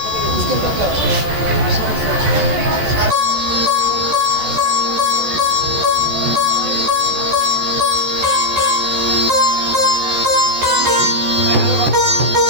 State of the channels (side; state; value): left; late; 14 ms